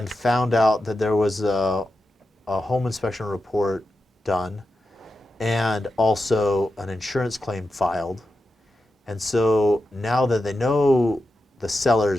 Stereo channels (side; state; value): both; normal; correlation 0.90